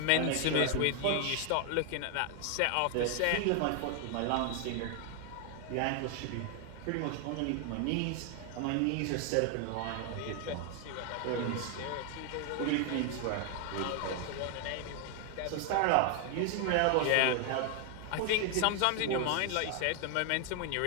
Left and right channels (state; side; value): different; both; correlation 0.00